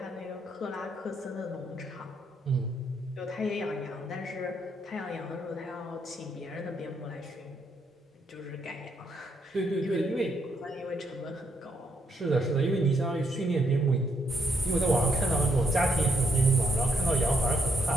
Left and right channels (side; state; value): both; normal; correlation 0.74